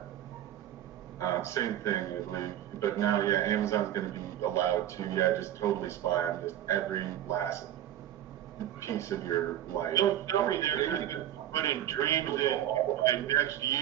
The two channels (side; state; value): left; quieter; 11.9 dB